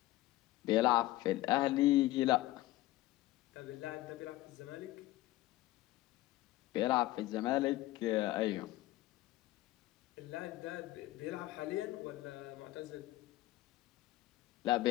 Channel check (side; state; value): right; quieter; 17.0 dB